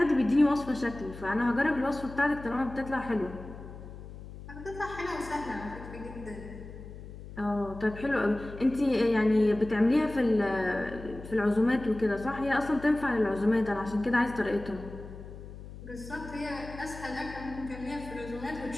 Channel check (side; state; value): left; noise; hum, 14 dB below the sound